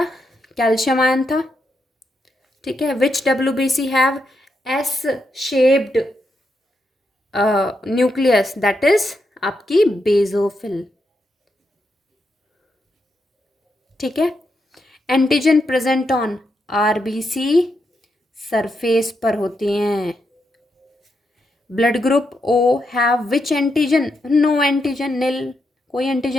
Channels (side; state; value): both; normal; correlation 0.83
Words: कैल्शियम आयन था। ठीक है, which WBC have S shaped nucleus, that is आपकी बेजोफिल। ठीक है, antigen present on RBC surface पर होती हैं। Blood group O have which antigen, no antigen, nil, कोई